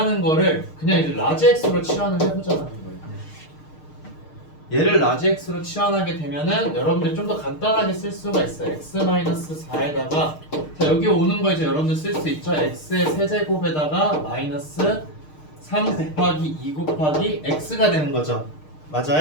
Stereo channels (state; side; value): late; right; 6.5 ms